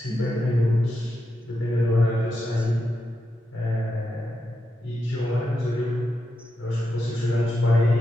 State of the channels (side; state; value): both; normal; correlation 0.86